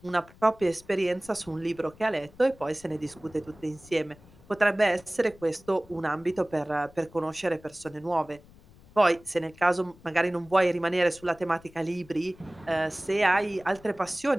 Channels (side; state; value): left; noise; rumble, 24 dB below the sound